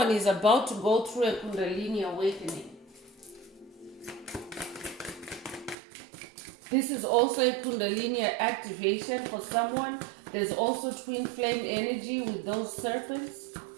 is about to go through a Kundalini awakening. This is also a Kundalini activation for someone. There's also twin flame energy with those serpents.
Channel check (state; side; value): drops out; left; at 5.8 s